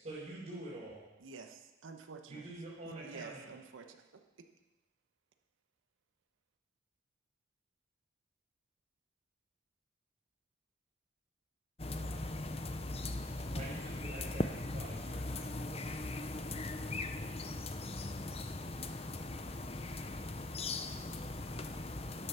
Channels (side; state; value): both; normal; correlation 0.61